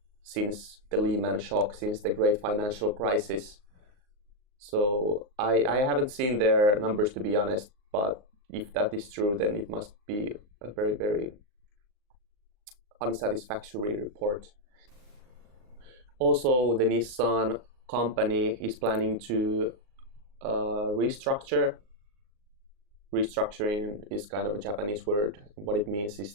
since the Lehman shock, since the great financial crisis. So I haven't seen their numbers, to be honest, but if that is true, then it must be a very, very unsatisfactory report. Also, the Nissan company is planning to restructure. Restructuring is kind of a Japanese word. What it means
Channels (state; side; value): late; left; 38 ms